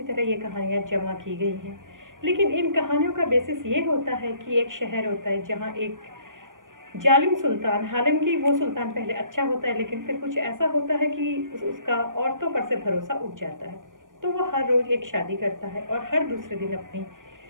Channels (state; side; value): late; left; 0.89 ms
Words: तरह ये कहानियाँ जमा की गई हैं, लेकिन इन कहानियों का बेसिस ये होता है कि एक शहर होता है जहाँ एक जालिम सुल्तान, हालांकि वो सुल्तान पहले अच्छा होता है लेकिन फिर कुछ ऐसा होता है कि उसका औरतों पर से भरोसा उठ जाता है। तो वो हर रोज़ एक शादी करता है और हर दूसरे दिन अपनी